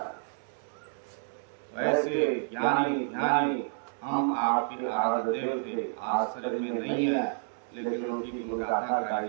वैसे ज्ञानी ज्ञानी हम आपके आराध्य देव थे, आज शरीर में नहीं है लेकिन उनकी गुणगाथा गाई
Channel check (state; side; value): silent; left; digital silence